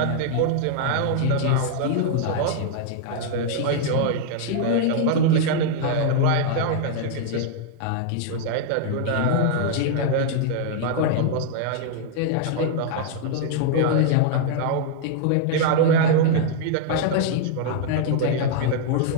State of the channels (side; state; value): both; different; correlation -0.01